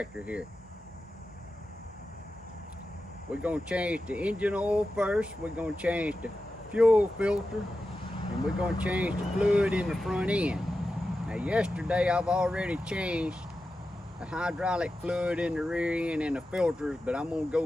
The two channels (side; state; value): both; normal; correlation 0.92